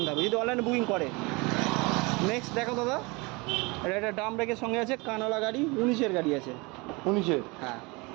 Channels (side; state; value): left; quieter; 26.3 dB